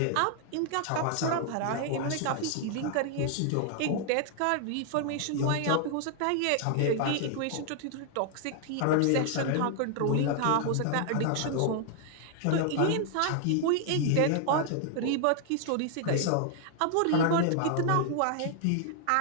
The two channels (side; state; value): both; different; correlation 0.00